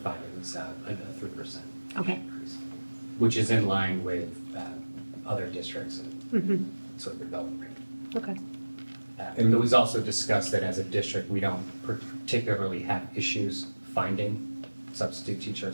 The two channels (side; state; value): both; inverted; correlation -1.00